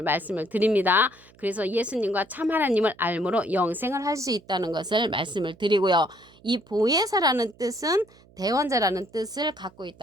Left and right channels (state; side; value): noise; right; hum, 28 dB below the sound